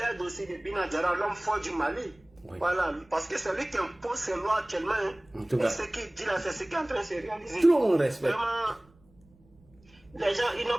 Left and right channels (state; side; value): noise; right; rumble, 30 dB below the sound